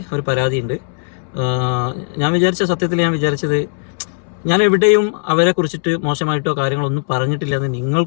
ഒരു പരാതിയുണ്ട്. ഞാൻ വിചാരിച്ചത് ഞാൻ എവിടെയും അവരെ കുറിച്ചിട്ട് മോശമായിട്ടോ കാര്യങ്ങളൊന്നും പറഞ്ഞിട്ടില്ലെന്ന്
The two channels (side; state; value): right; silent; 68 dB below the other